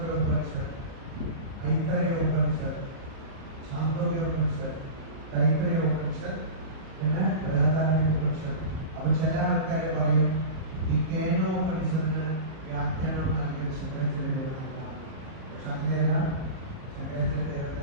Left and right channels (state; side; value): late; left; 37 ms